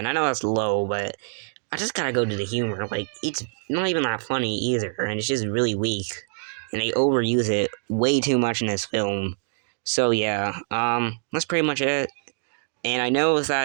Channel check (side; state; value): left; silent; digital silence